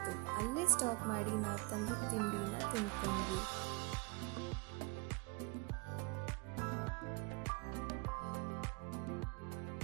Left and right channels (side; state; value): left; quieter; 26.9 dB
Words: ಅಲ್ಲೇ ಸ್ಟಾಪ್ ಮಾಡಿ ನಾವು ತಂದಿದ್ದ ತಿಂಡಿನ ತಿಂದ್ಕೊಂಡ್ವಿ.